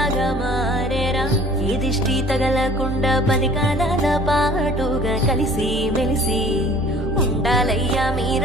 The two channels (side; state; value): right; noise; hum, 27 dB below the sound